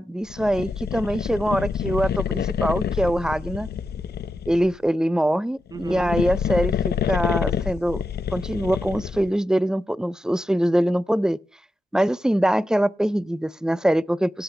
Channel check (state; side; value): normal; both; correlation 0.89